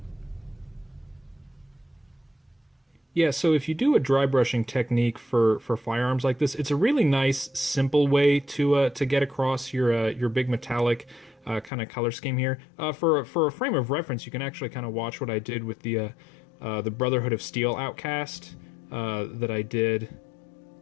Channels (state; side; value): drops out; right; at 11.7 s